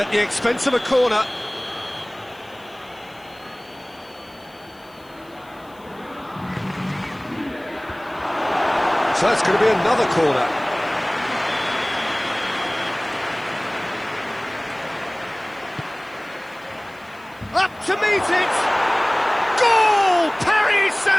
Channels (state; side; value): noise; left; hiss, 29 dB below the sound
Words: the expense of a corner. So it's going to be another corner. Up to meet it! Goal! Paris